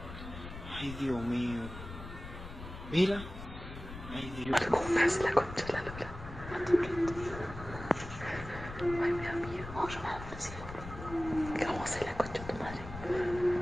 Ay, Dios mío. Mira. Ay, Dios. ¿Cómo hace la concha de la lora? Ay, me da miedo. Vamos a llamar a la policía. ¿Qué vamos a hacer la concha de tu madre?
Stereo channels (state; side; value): noise; left; rumble, 11 dB below the sound